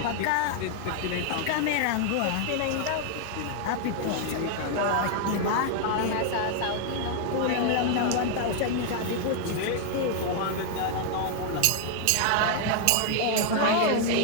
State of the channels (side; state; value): both; different; correlation 0.00